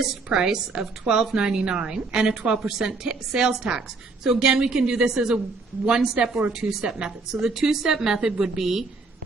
price of $12.99 and a 12% sales tax. So again, we can do this as a one-step or a two-step method. So the two-step method would be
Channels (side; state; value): left; quieter; 4.0 dB